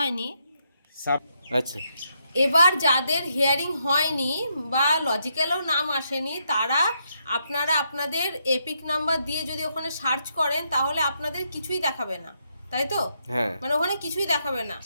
আচ্ছা, এবার যাদের হিয়ারিং হয়নি বা লজিক্যালও নাম আসেনি তারা আপনারা আপনাদের এপিক নাম্বার দিয়ে যদি ওখানে সার্চ করেন তাহলে আপনাদের কিছুই দেখাবে না, তাই তো? হ্যাঁ, মানে ওখানে কিছুই দেখাবে না,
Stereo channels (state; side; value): inverted; both; correlation -0.78